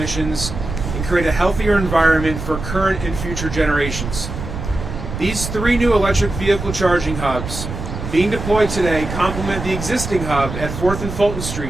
and create a healthier environment for current and future generations. These 3 new electric vehicle charging hubs being deployed today complement the existing hub at 4th and Fulton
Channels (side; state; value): right; noise; rumble, 7 dB below the sound